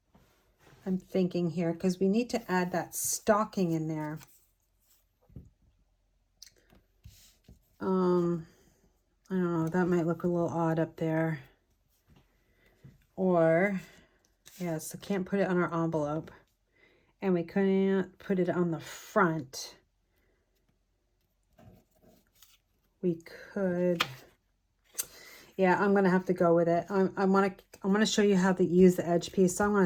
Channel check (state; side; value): identical; both; correlation 1.00